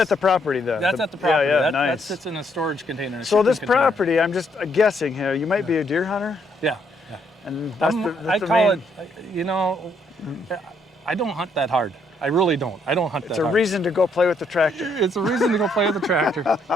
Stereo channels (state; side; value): normal; both; correlation 0.72